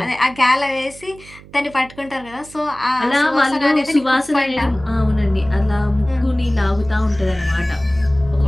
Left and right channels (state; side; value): noise; right; hum, 21 dB below the sound